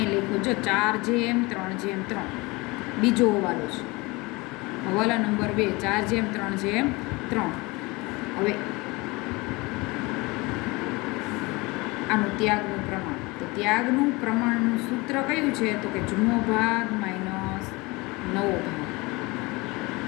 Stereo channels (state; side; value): quieter; right; 24.2 dB